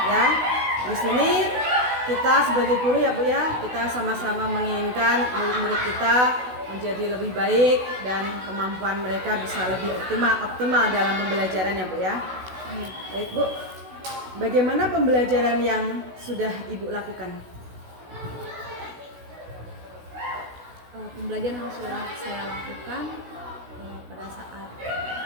ya. Di sini kita sebagai guru ya Bu ya, kita sama-sama menginginkan murid-murid kita menjadi lebih baik dan kemampuan mereka bisa lebih optimal dalam pembelajaran ya Bu ya. Baik Bu, bagaimana pembelajaran yang sudah Ibu lakukan? Pembelajaran yang sudah saya lakukan pada saat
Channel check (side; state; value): left; late; 16 ms